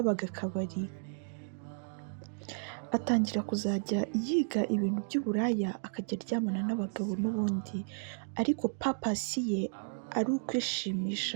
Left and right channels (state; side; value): silent; left; digital silence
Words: akabari. Atangira kuzajya yiga ibintu by'uburaya, akajya aryamana n'abagabo n'ubundi, ariko papasi ye ari